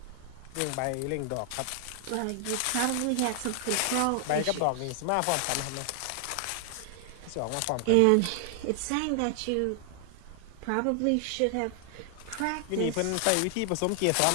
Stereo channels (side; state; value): both; different; correlation 0.00